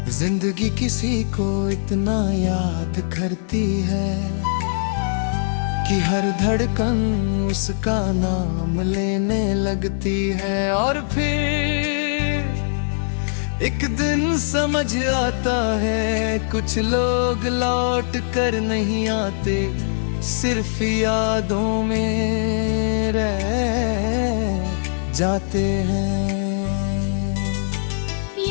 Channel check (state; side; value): silent; right; 58 dB below the other